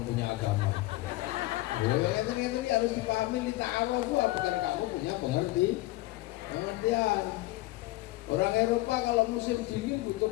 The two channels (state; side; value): quieter; right; 19.0 dB